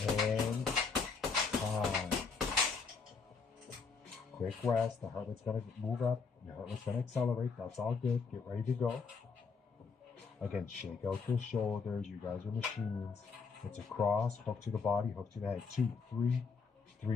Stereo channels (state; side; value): quieter; right; 5.0 dB